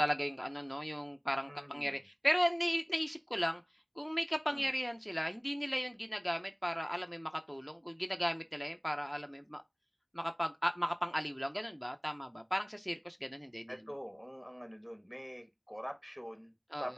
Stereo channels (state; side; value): identical; both; correlation 1.00